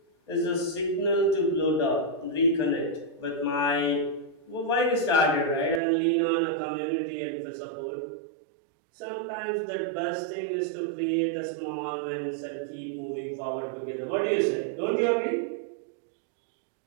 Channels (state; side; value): drops out; left; at 5.8 s